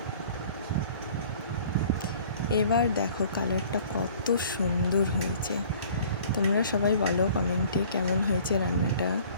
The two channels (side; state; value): both; inverted; correlation -0.51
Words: এবার দেখো কালারটা কত সুন্দর হয়েছে। তোমরা সবাই বলো কমেন্টে কেমন হয়েছে রান্নাটা।